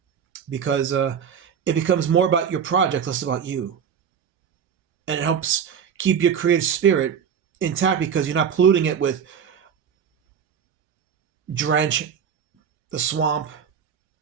because it becomes more about your project, less about you. And it helps keep your creative spirit intact because you're not polluting it with drench, the swamp,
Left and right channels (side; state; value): left; quieter; 7.6 dB